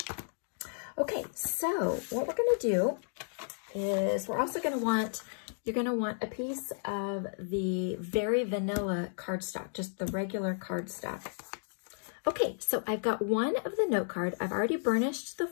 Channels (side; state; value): right; silent; digital silence